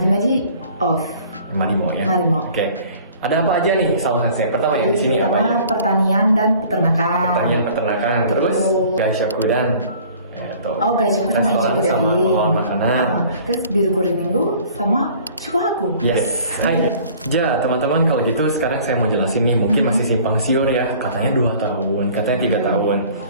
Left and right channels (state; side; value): inverted; both; correlation -0.50